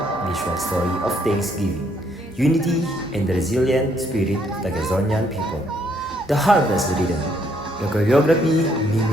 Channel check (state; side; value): normal; both; correlation 0.70